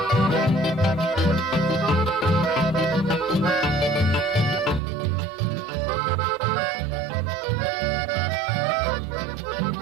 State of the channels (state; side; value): drops out; left; at 4.8 s